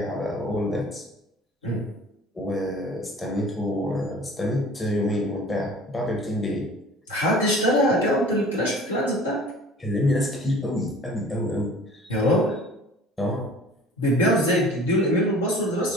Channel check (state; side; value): normal; both; correlation 0.45